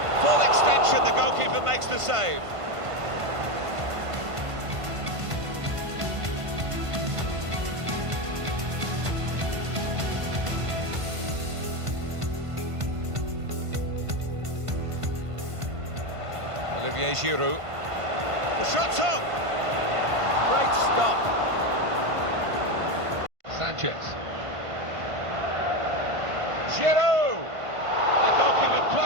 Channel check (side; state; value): left; late; 1.5 ms